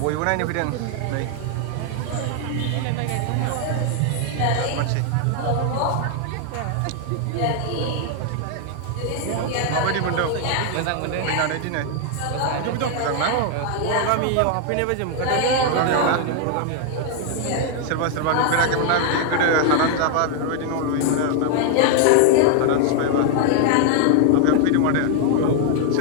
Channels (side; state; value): both; different; correlation 0.00